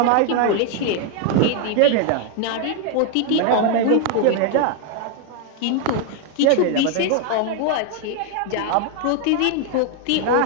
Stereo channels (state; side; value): different; both; correlation 0.01